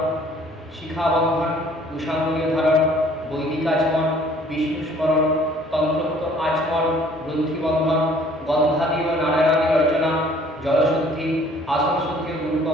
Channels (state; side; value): normal; both; correlation 0.56